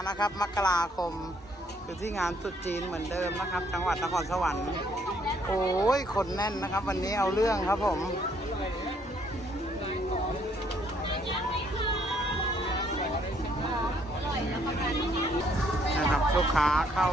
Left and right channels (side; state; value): both; normal; correlation 0.67